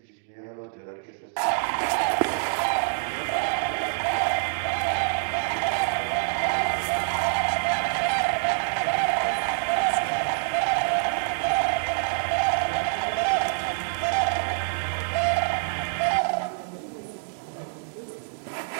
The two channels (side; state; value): left; silent; digital silence